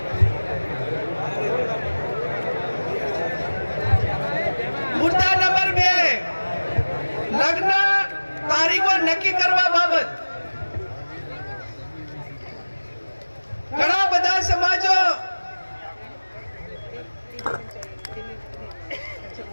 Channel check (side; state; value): both; inverted; correlation -1.00